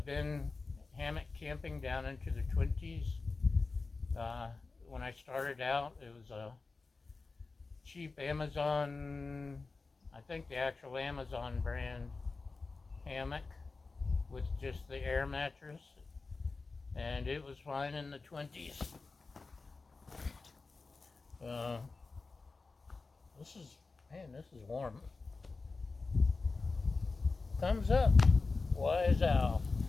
been hammock camping down into the 20s. When I started out, it was a cheap Amazon, I think the actual Amazon brand hammock with just the air mattress, and it was fine in the 20s. This is warm. Thumbs up. Wise owl.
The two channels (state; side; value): quieter; right; 4.0 dB